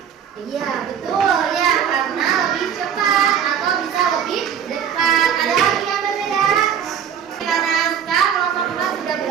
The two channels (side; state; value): left; quieter; 8.3 dB